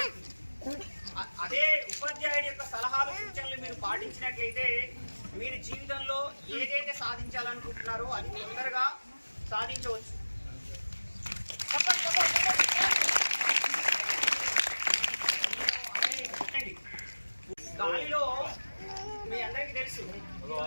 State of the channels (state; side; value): inverted; both; correlation -1.00